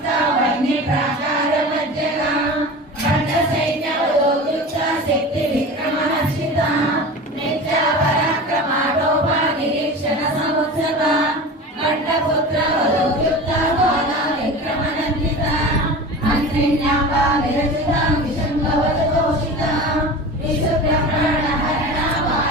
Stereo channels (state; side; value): normal; both; correlation 0.33